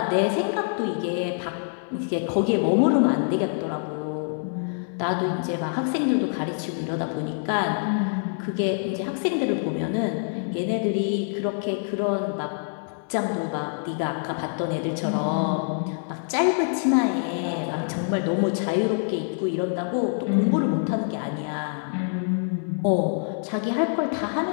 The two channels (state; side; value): silent; right; digital silence